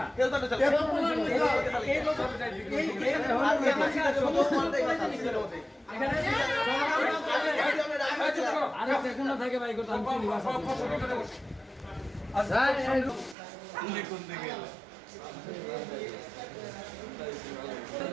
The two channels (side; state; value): left; drops out; at 13.4 s